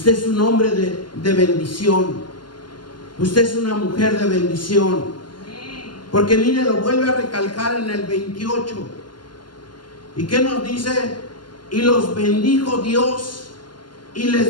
es un hombre de bendición. Usted es una mujer de bendición. Porque mire, lo vuelve a recalcar en el 28. ¿Y qué nos dice? Y los bendijo Dios y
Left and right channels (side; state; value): right; late; 0.71 ms